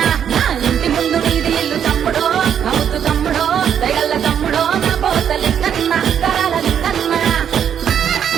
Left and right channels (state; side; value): quieter; left; 8.7 dB